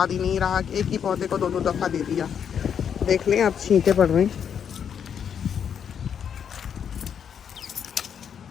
ही नहीं रहा कि एक ही पौधे को 2-2 दफ़ा दे दिया। देख लें अब छींटे पड़ रहे हैं,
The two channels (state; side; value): quieter; right; 7.9 dB